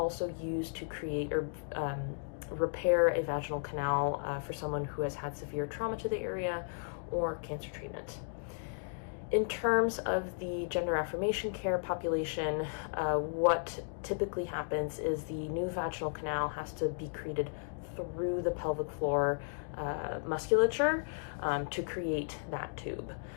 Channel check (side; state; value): right; silent; digital silence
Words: used to create or repair a vaginal canal for someone who has had severe trauma to the area or cancer treatment. In terms of the gender affirmation care population, what typically happens is the new vaginal canal has to be created through the pelvic floor musculature to create that tube.